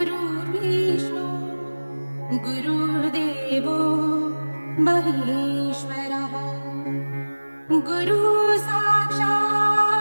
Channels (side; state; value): both; inverted; correlation -1.00